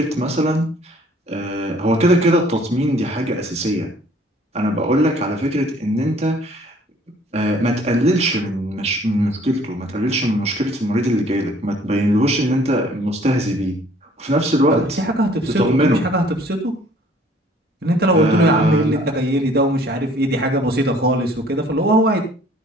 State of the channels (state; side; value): normal; both; correlation 0.56